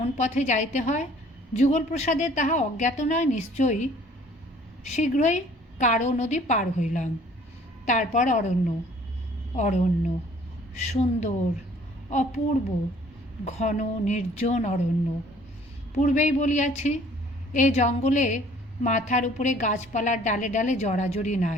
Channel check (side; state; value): both; normal; correlation 0.55